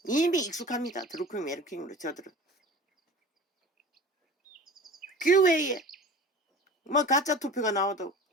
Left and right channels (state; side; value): normal; both; correlation 0.38